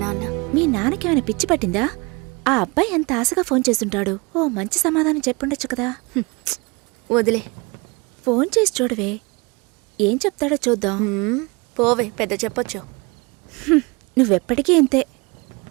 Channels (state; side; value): quieter; left; 27.6 dB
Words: నాన్న. మీ నాన్నకేమైనా పిచ్చి పట్టిందా? ఆ అబ్బాయి ఎంత ఆశగా ఫోన్ చేస్తుంటాడు. ఓ మంచి సమాధానం చెప్పుండొచ్చు కదా. వదిలే. ఫోన్ చేసి చూడవే, ఏం చెప్తాడో చూద్దాం. పోవే, పెద్ద చెప్పొచ్చు. నువ్వెప్పటికీ ఇంతే.